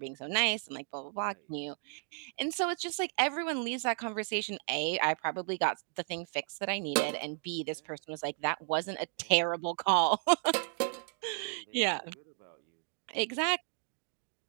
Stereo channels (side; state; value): left; silent; 55 dB below the other